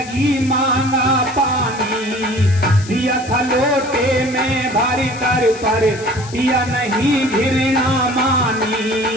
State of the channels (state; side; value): noise; left; hiss, 16 dB below the sound